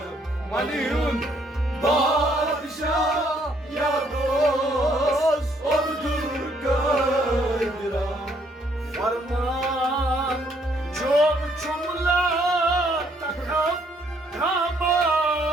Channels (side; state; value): both; normal; correlation 0.68